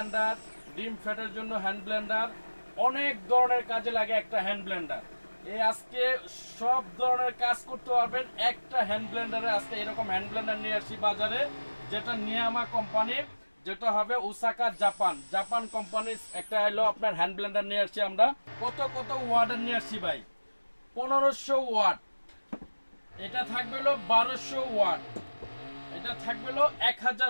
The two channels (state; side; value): inverted; both; correlation -1.00